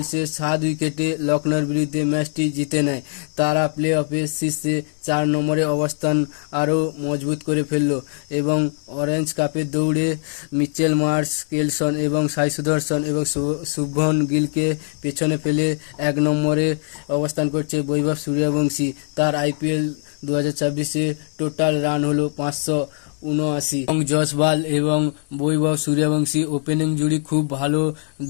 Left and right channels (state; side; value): silent; right; 65 dB below the other